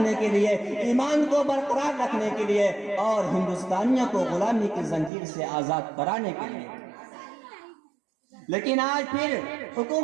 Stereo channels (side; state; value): left; drops out; at 5.1 s